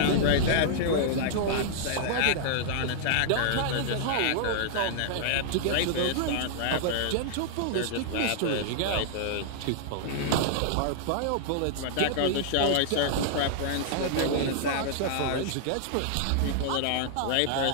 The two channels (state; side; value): different; both; correlation -0.01